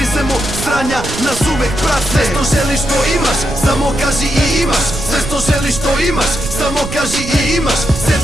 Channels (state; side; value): noise; right; rumble, 8 dB below the sound